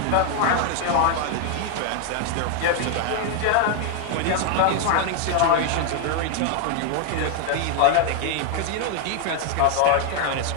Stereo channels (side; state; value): both; different; correlation 0.00